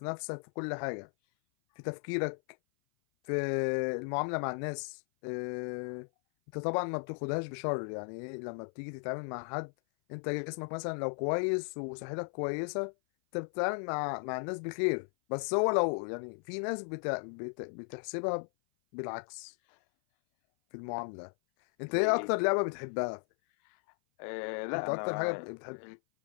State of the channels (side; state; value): right; silent; 54 dB below the other